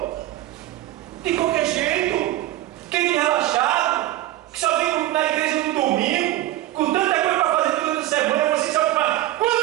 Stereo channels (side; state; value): left; quieter; 15.2 dB